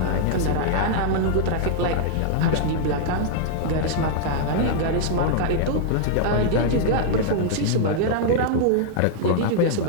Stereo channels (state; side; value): different; both; correlation -0.01